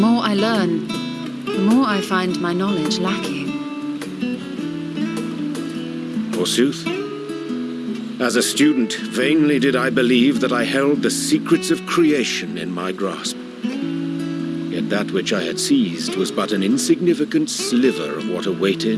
I learn, the more I find my knowledge lacking. Forsooth. As a student, vainly did I believe that I held the secrets of creation in my grasp. Yet that which I had seized was but an insignificant sliver of what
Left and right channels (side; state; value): both; identical; correlation 1.00